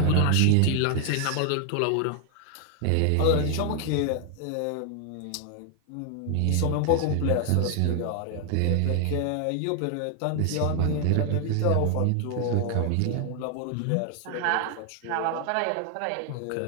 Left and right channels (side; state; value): both; different; correlation 0.00